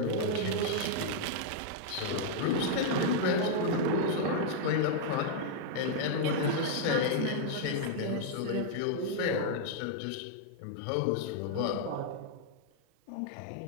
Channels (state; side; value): different; both; correlation -0.01